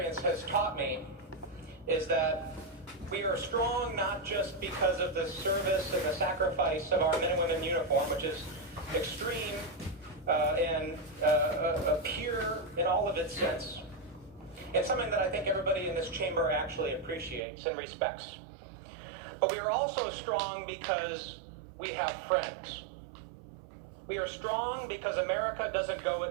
has taught me is that we are strong not just because of the service and the sacrifice of our men and women in uniform, which is extreme and pure in all of its sense. It's something that I think everybody in this chamber actually appreciates and respects. But we are also strong because we have friends. We are strong because America doesn't go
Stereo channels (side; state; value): left; drops out; at 17.4 s